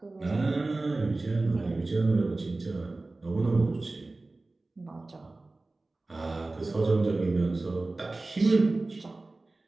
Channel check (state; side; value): quieter; left; 3.2 dB